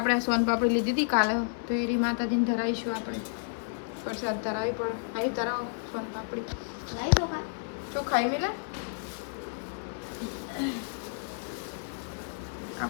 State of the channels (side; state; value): right; silent; 57 dB below the other